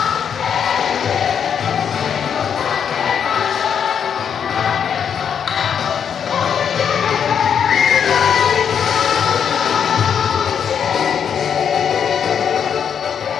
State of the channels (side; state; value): right; quieter; 7.7 dB